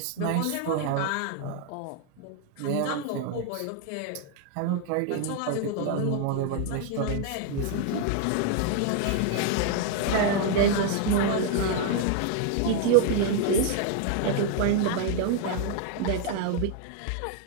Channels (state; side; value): different; both; correlation 0.00